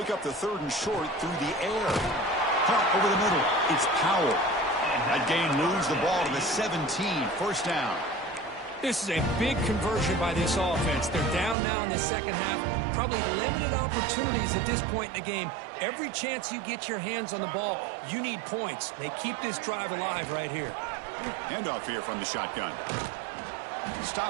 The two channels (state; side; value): drops out; left; at 11.6 s